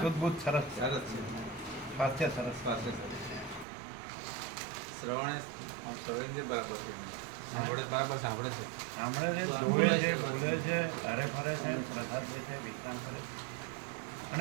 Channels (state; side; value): drops out; left; at 3.7 s